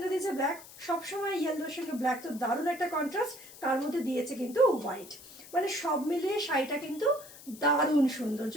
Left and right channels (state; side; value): noise; left; hiss, 18 dB below the sound